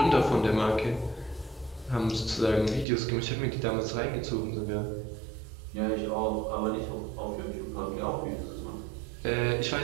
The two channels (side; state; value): left; drops out; at 2.9 s